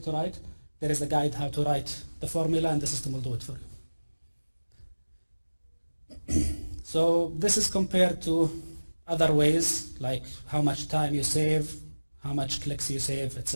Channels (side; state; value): both; inverted; correlation -1.00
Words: to write. There is a guide how to write the formula and the system will do it for you. So this is compared to other ways, like how much time you save, how much clicks you save,